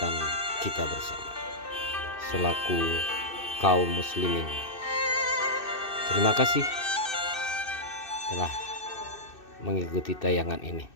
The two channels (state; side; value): late; right; 2.6 ms